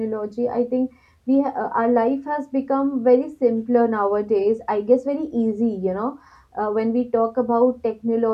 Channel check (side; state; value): both; identical; correlation 1.00